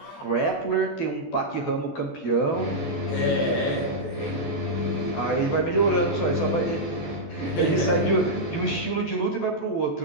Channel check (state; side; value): late; right; 14 ms